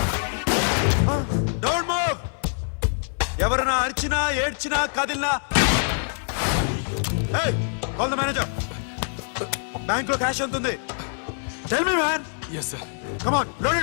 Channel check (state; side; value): silent; right; digital silence